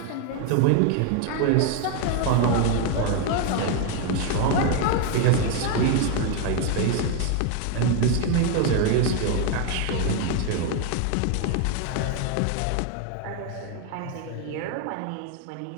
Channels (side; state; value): both; different; correlation 0.01